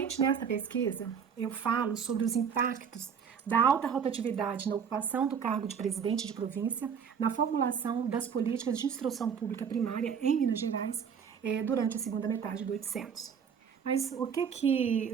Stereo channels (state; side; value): quieter; left; 7.0 dB